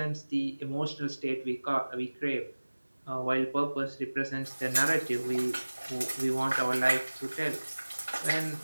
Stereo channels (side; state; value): both; inverted; correlation -1.00